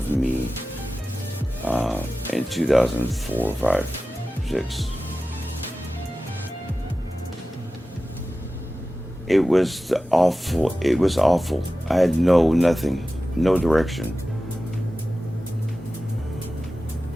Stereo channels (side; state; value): both; normal; correlation 0.95